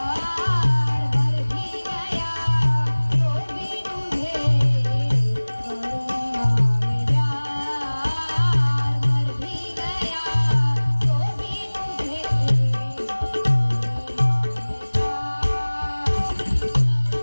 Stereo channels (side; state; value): both; inverted; correlation -1.00